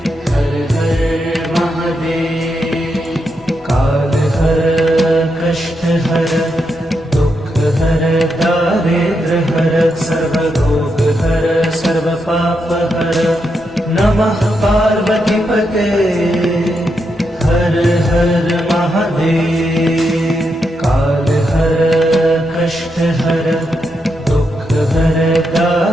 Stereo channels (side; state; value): both; normal; correlation 0.83